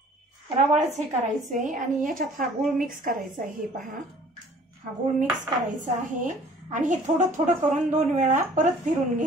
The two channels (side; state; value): both; normal; correlation 0.53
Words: रवाळच हे करायचंय। आणि याच्यात हा गूळ मिक्स करायचा आहे। हे पहा हा गूळ मिक्स करायचा आहे आणि हे थोडं थोडं करून 2 वेळा परत फिरून